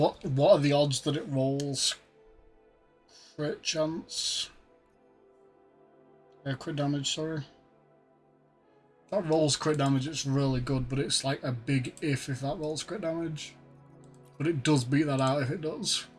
are the odds that it rolls crit chance? Crit damage, sorry. That rolls crit damage, it's really good, but it's like a big if that rolls crit damage. But it does beat that out if it does.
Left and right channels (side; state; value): both; identical; correlation 1.00